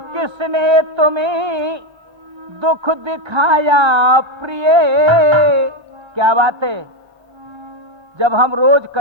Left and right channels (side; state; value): both; normal; correlation 0.08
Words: किसने तुम्हें दुख दिखाया प्रिय। क्या बात है, जब हम रोज